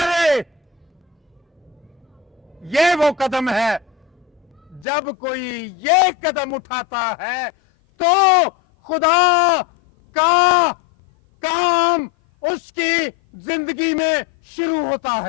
ये वो कदम है। जब कोई ये कदम उठाता है तो खुदा का काम उसकी जिंदगी में शुरू होता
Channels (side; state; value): right; drops out; at 4.9 s